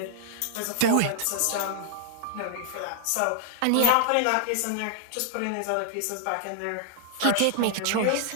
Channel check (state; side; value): different; both; correlation -0.01